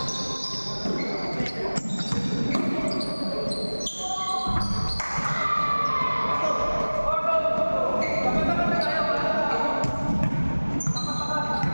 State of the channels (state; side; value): inverted; both; correlation -1.00